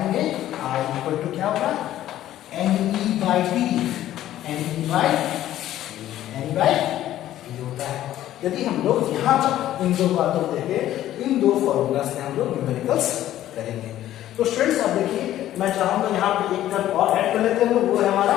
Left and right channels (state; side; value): quieter; right; 13.0 dB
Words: आई इक्वल टू क्या होगा, n e by t, n e by t होता है। यदि हम लोग यहाँ तक इन दो बातों को देखें, इन दो फॉर्मूला से हम लोग न्यूमेरिकल्स करेंगे। तो स्टूडेंट्स अब देखिए, मैं चाहूंगा यहाँ पे एक टर्म और ऐड कर लेते हैं, वो है हमारा